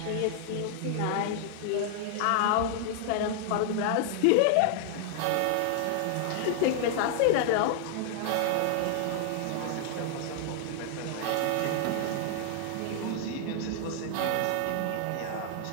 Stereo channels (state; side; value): different; both; correlation 0.00